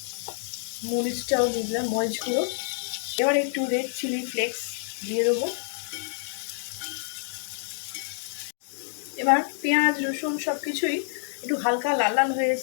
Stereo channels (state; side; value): silent; right; digital silence